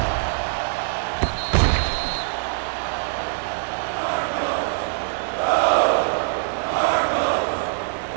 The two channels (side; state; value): left; silent; 63 dB below the other